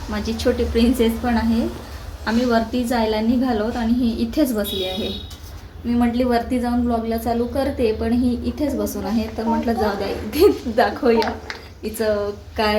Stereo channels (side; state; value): both; identical; correlation 1.00